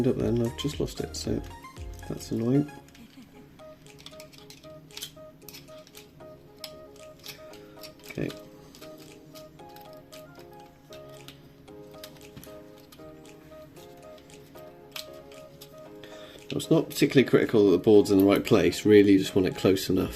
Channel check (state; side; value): identical; both; correlation 1.00